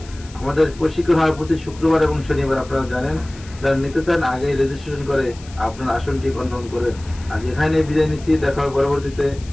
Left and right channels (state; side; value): noise; left; hiss, 21 dB below the sound